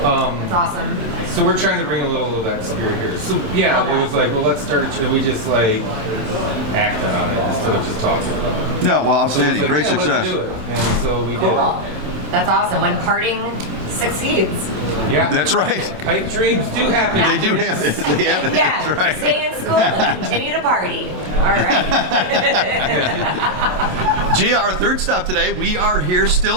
It's awesome. So we're trying to bring a little of that spirit here. So yeah, Okay. it was like, well, let's start a channel. We just like acted on it instead of just talking about it. No, well, So it was outstanding. like, Great yeah, success. Let's do it. And so we did. Cool. That's awesome. When parting succeeds. Yeah. That's right. Pipe dreams do happen. They do have it. They have it. Yeah, That's right. stay in school and continue to party. All right. Gia, our third stop today, we are here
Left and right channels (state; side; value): late; left; 27 ms